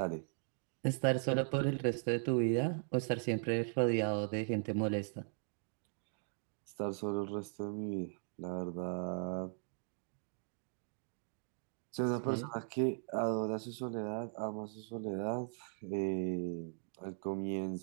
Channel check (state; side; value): silent; left; digital silence